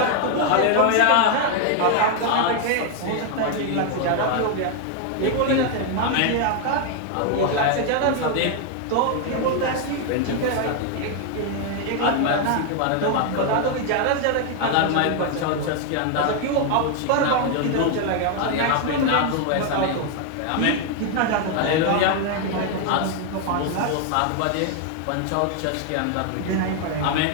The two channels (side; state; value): both; different; correlation 0.00